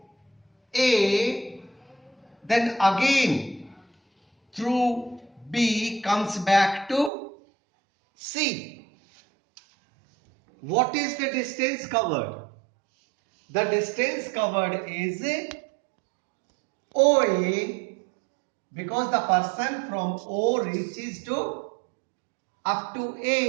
A, then again through B comes back to C. What is the distance covered? The distance covered is OA, because the person from O reaches to up to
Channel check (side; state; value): left; drops out; at 7.1 s